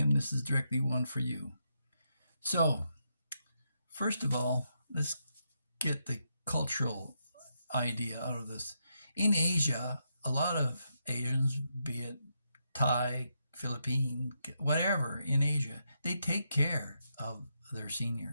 this is directly one for you. So, first of all, let's get the cultural idea out of this. In Asia, a lot of Asians, be it Thai, Philippine, whatever in Asia, they take care of their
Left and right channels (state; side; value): inverted; both; correlation -0.81